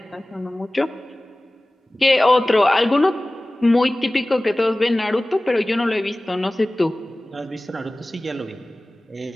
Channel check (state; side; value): normal; both; correlation 0.98